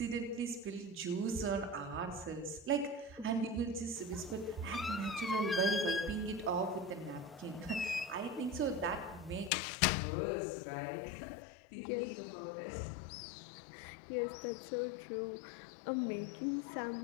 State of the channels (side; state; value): right; drops out; at 9.5 s